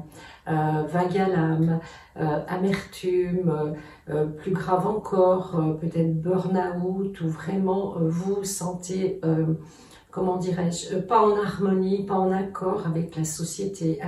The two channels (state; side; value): identical; both; correlation 1.00